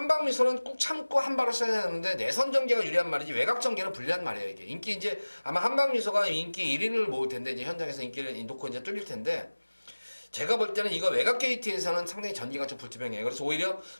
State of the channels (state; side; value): inverted; both; correlation -1.00